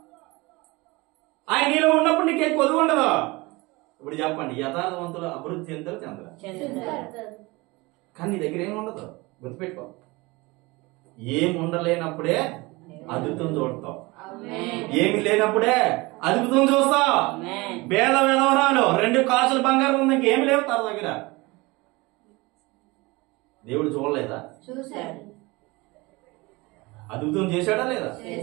ఆయన నీలో ఉన్నప్పుడు నీకేం కొదువు ఉండదు. ఇప్పుడు చెప్పండి, యథార్థవంతులు అభివృద్ధి చెందుతారు చెందరు. కానీ నీ దగ్గర ఏమి ఉండదు. గుర్తుపెట్టుకో, ఏం ఉండలేనప్పుడే అద్భుతం చూడతావు. ఏమి లేనప్పుడే అద్భుతం చూస్తావు. వేల వెలవరాలు 2 కాసులు బంగారం ఉంది, ఇంకేమి లేవు తన దగ్గర. దేవుడు చూడలేదా? చూశాడు. అద్భుతం చేశాడా లేదా?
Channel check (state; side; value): quieter; left; 23.5 dB